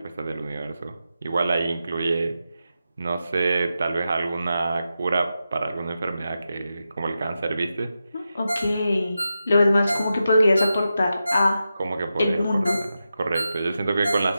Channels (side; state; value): both; inverted; correlation -0.89